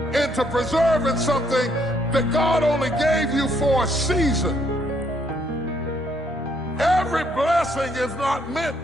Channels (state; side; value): normal; both; correlation 0.70